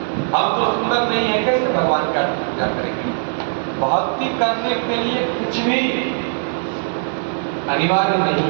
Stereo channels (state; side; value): silent; left; 61 dB below the other